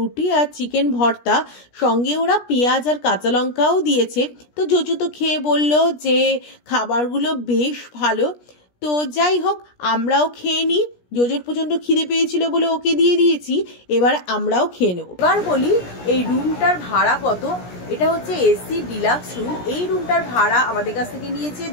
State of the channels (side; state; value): right; late; 17 ms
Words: আর চিকেন ভর্তা, সঙ্গে ওরা পেঁয়াজ আর কাঁচা লঙ্কাও দিয়েছে। তো জোজো তো খেয়ে বলল যে খাবারগুলো বেশ ভালো। তো যাই হোক, আমরাও খেয়ে নিই। জোজোর প্রচণ্ড খিদে পেয়েছিল বলে ওকে দিয়ে দিয়েছি, এবার আমরাও খেয়ে নেব। এবার বলি এই রুমটার ভাড়া কত। এটা হচ্ছে এসি ডিলাক্স রুম। এই রুমটার ভাড়া আমাদের কাছ থেকে নিয়েছে